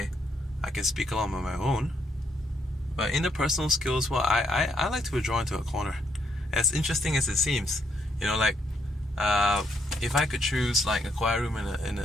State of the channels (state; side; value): normal; both; correlation 0.75